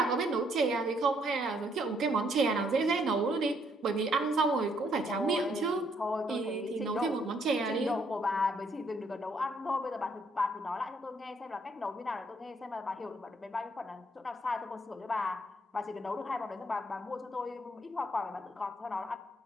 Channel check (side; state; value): both; normal; correlation 0.70